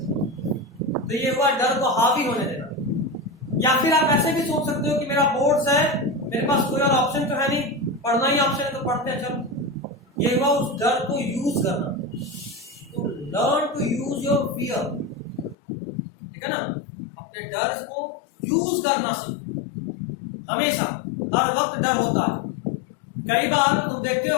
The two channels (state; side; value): drops out; right; at 15.6 s